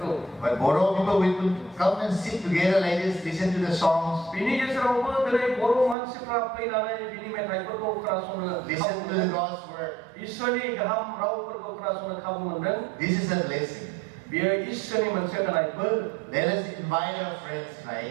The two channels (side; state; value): left; drops out; at 6.0 s